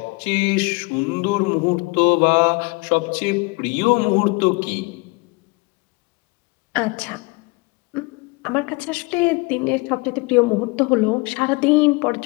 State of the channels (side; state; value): right; quieter; 26.2 dB